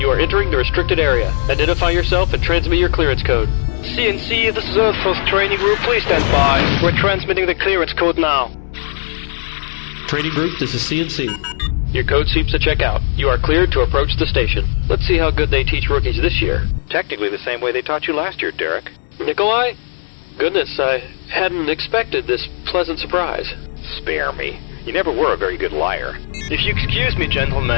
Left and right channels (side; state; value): right; silent; digital silence